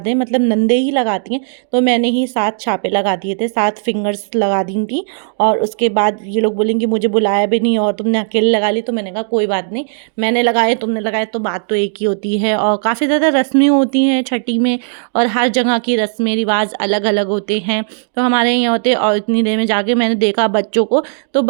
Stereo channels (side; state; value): left; silent; digital silence